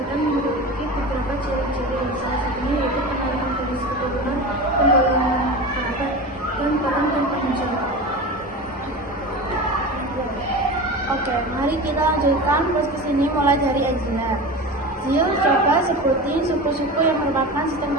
memiliki beberapa ciri-ciri, salah satunya yaitu penarikan garis keturunan, penggolongan kerabat, dan peran dan tanggung jawab. Oke, mari kita lanjutkan podcast ini mulai dari Angela. Zil, coba sebutin suku-suku yang merupakan sistem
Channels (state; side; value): normal; both; correlation 0.29